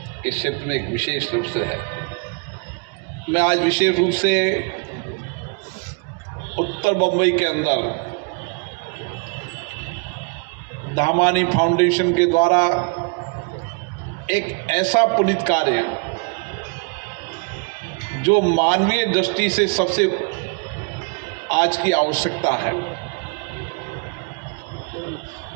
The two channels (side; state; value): left; quieter; 34.7 dB